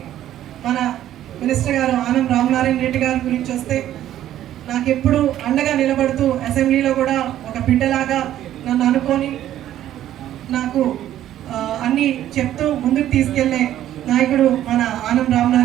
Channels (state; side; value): quieter; left; 12.2 dB